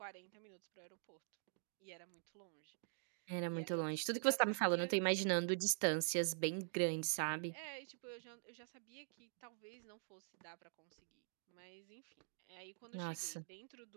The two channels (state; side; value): silent; left; digital silence